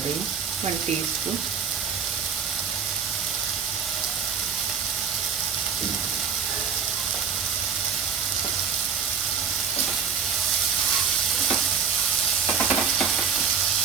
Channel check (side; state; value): left; quieter; 6.8 dB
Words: हूँ 1 टीस्पून।